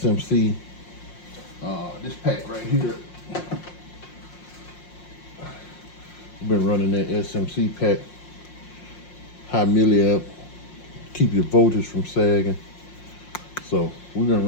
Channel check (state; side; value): late; right; 5.6 ms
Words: This pack right here, I've been running that SMC pack, high milliamp, keep your voltage from sagging. So we've been